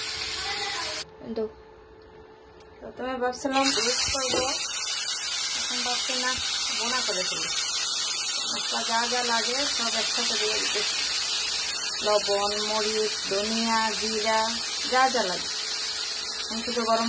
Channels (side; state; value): both; identical; correlation 1.00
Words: প্রথমে ভাবছিলাম রোস্ট করবো, এখন ভাবছি না বোনা করে ফেলি। মশলা যা যা লাগে সব একসাথে দিয়ে দিতে, লবণ, মরিচ, ধনিয়া, জিরা যা যা লাগে। আমি শুধু গরম